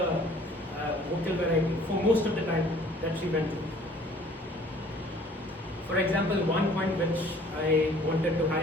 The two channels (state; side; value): normal; both; correlation 0.54